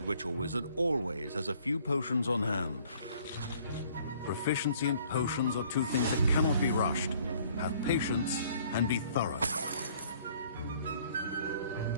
witch or wizard always has a few potions on hand. Proficiency and potions are two things that cannot be rushed. Have patience and be thorough.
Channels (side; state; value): both; inverted; correlation -0.58